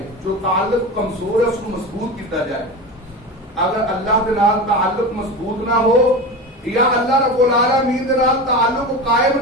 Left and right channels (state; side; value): normal; both; correlation 0.26